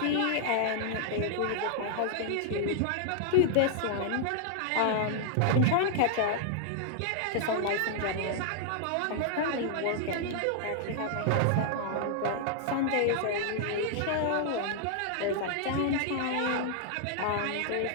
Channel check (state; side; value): different; both; correlation -0.01